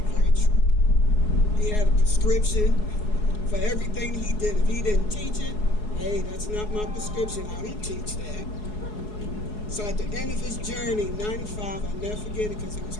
true. He had a prescription for everything he did. If he didn't teach it, hey, that's not my prescription. I don't teach that. So at the end of his journey, 95, I'll never forget it because he was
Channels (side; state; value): right; late; 4.7 ms